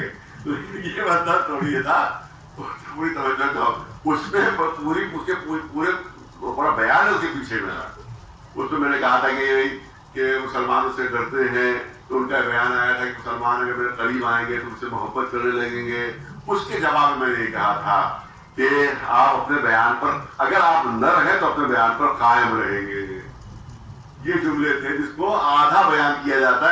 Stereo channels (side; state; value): both; identical; correlation 1.00